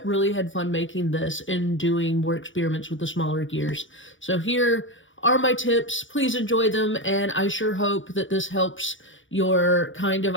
really had fun making this and doing more experiments with the smaller gears. So here are my tips. Please enjoy them, and I sure hope that this helps your kind of,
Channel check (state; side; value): late; right; 0.56 ms